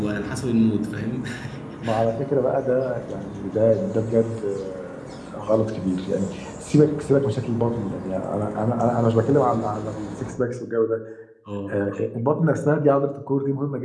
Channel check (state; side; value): identical; both; correlation 1.00